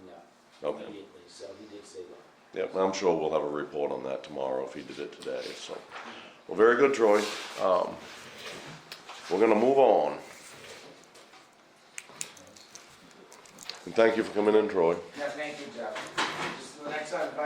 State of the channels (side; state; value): both; identical; correlation 1.00